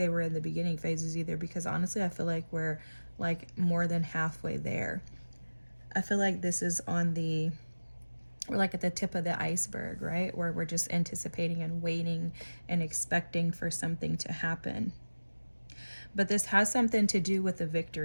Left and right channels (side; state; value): both; inverted; correlation -1.00